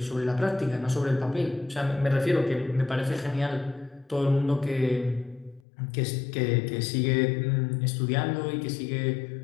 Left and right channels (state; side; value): drops out; right; at 5.6 s